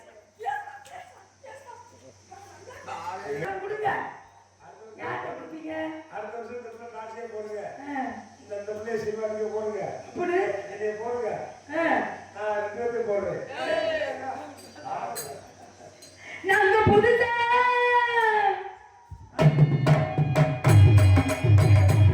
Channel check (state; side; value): identical; both; correlation 1.00